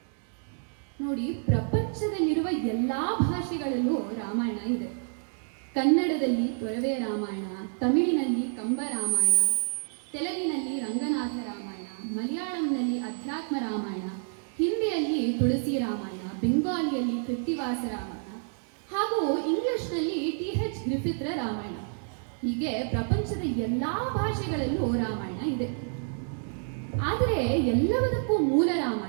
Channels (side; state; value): left; silent; 59 dB below the other